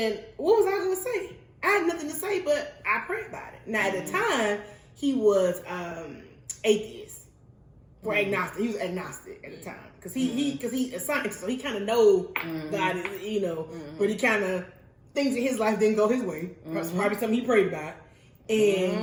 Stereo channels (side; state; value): both; identical; correlation 1.00